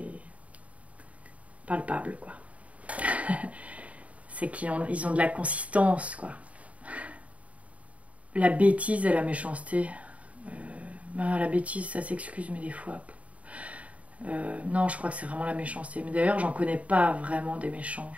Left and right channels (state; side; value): late; left; 0.067 ms